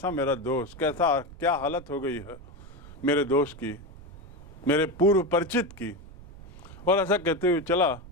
मेरा दोस्त, कैसा क्या हालत हो गई है मेरे दोस्त की, मेरे पूर्व परिचित की। और ऐसा कहते हुए चला।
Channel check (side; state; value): right; noise; rumble, 18 dB below the sound